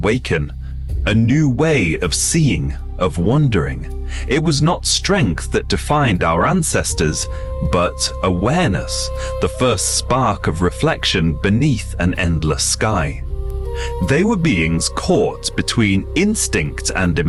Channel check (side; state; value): both; identical; correlation 1.00